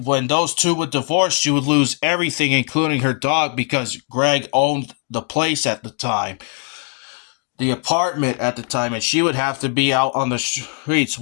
those two would divorce, she would lose everything, including her dog, because Greg owned the place at the time, the apartment at the time, and she would have to be out on the streets.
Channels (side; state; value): right; quieter; 37.9 dB